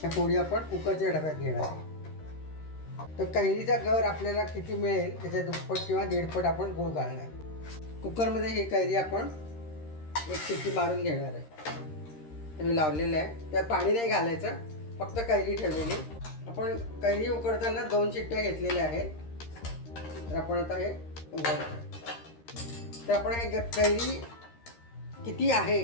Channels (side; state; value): right; late; 13 ms